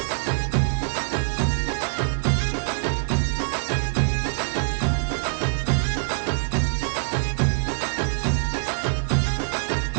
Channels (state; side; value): silent; left; 62 dB below the other